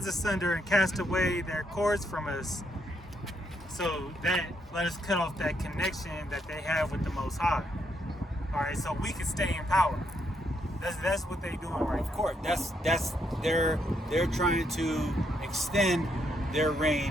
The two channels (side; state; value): both; normal; correlation 0.76